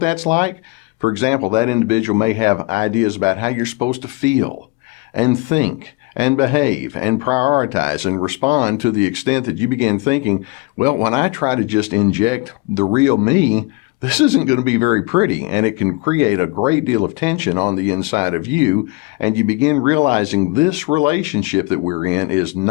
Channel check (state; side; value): quieter; right; 25.1 dB